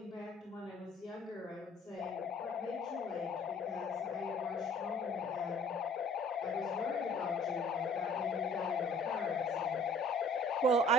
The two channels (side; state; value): both; normal; correlation 0.54